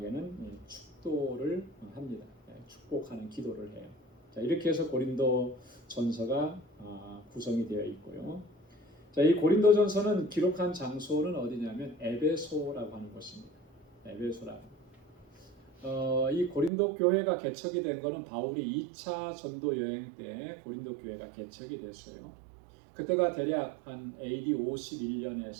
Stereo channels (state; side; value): drops out; left; at 16.7 s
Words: 축도를 합니다. 축복하는 기도를 해요. 자, 이렇게 해서 고린도 전서가 구성이 되어 있고요. 자, 이 고린도 전서는 기록한 장소는 어디냐면 에베소라고 하는 곳입니다. 에베소라. 이 고린도 교회가 개척이 된 것은 바울이 2차 전도 여행 때 고린도 교회가 개척이 됐어요. 그때가 대략 한 AD